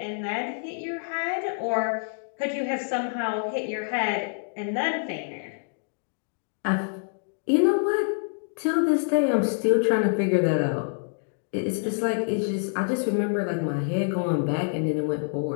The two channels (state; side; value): silent; right; digital silence